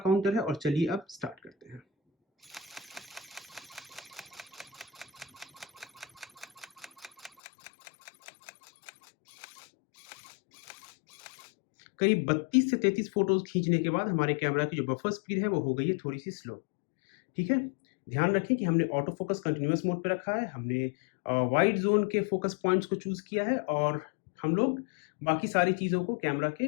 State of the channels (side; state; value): right; drops out; at 7.3 s